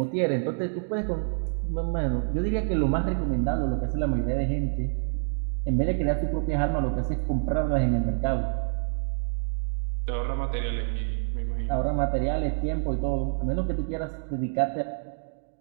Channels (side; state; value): left; silent; 57 dB below the other